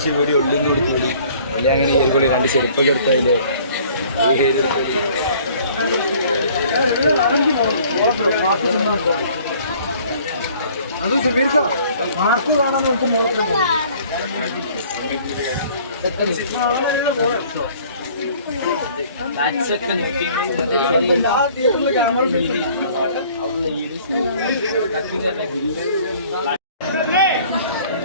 വീഡിയോ ഉള്ളിന്ന് കൊടുത്തോളി അല്ലെ അങ്ങനെ ഏൽക്കൊള്ളി 2 ചെരുപ്പൊക്കെ എടുത്താലേ. അത് സുമീർക്ക മാർക്ക് കാണാൻ നോക്കുമ്പോൾ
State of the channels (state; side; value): inverted; both; correlation -0.54